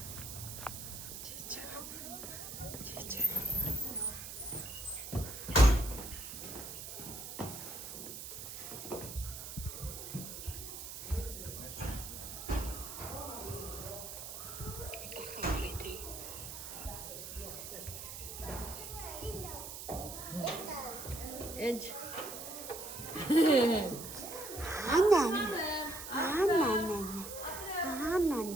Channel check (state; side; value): noise; right; hiss, 9 dB below the sound